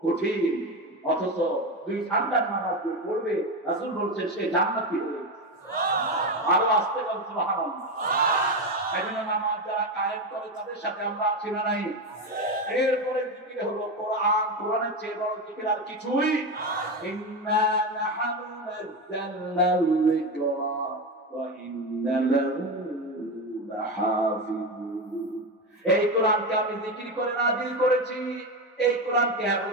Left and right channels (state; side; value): normal; both; correlation 0.16